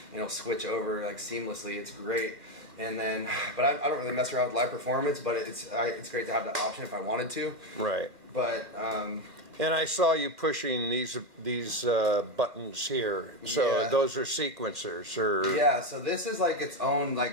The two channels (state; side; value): late; left; 2.2 ms